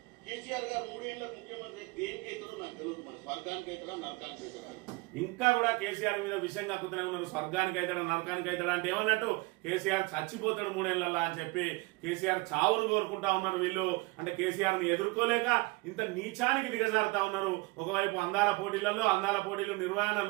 కేసీఆర్ గారు 3 ఏళ్ల ముఖ్యమంత్రి దేనికి అవుతాడో నాకు తెలియదు. మన స్వర్గానికి అవుతాడా నరకానికి అవుతాడా? ఇంకా కూడా కేసీఆర్ మీద విషయం కక్కుతూనే ఉన్నారు. స్వర్గానికి అవుతాడా నరకానికి అవుతాడా అంటే ఏమన్నట్టు కేసీఆర్ చచ్చిపోతాడు 3 ఏళ్లలో అని చెప్పి కేసీఆర్ చావును కోరుకుంటా ఉన్నారు వీళ్ళు. అంటే కేసీఆర్ ని ఎదుర్కోలేక ఇంత నీచానికి దిగజారుతా ఉన్నారు. ఒకవైపు అందాల పోటీలు నిర్వహణ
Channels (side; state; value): left; quieter; 24.6 dB